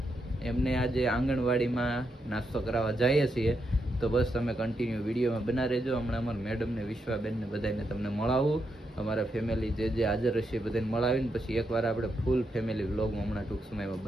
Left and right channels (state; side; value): normal; both; correlation 0.82